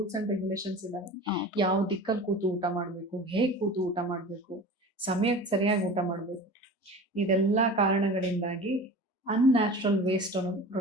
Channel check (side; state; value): both; normal; correlation 0.36